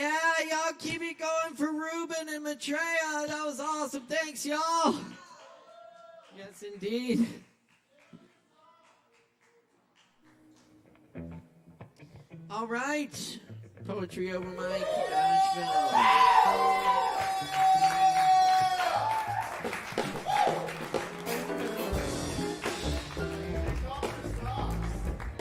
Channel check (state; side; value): identical; both; correlation 1.00